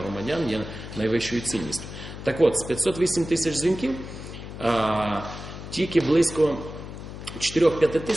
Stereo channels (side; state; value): left; noise; hum, 11 dB below the sound